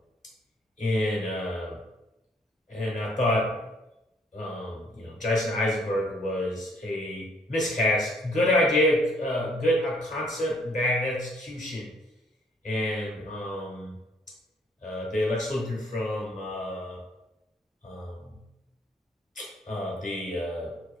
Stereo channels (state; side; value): normal; both; correlation 0.64